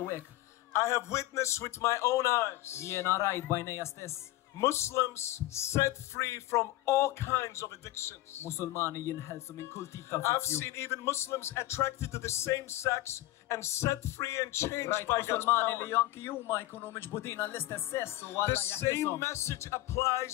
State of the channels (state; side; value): quieter; right; 16.5 dB